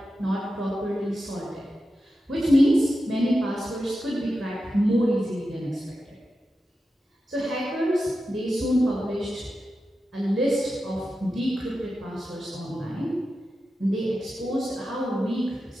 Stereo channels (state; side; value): normal; both; correlation 0.91